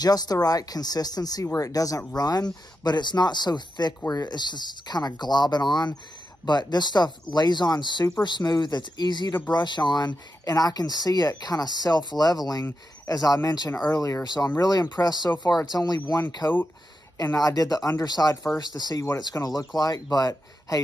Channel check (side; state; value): both; normal; correlation 0.88